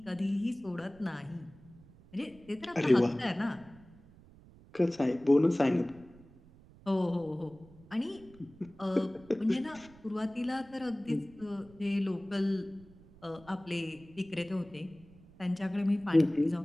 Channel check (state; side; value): noise; right; rumble, 23 dB below the sound